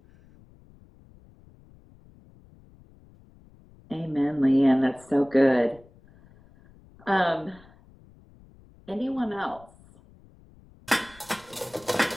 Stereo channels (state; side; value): noise; left; rumble, 26 dB below the sound